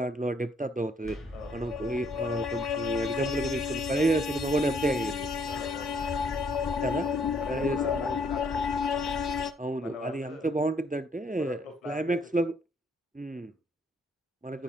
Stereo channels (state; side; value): normal; both; correlation 0.66